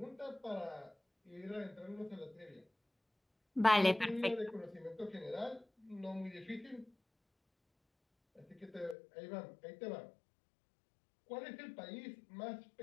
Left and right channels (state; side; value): drops out; right; at 9.0 s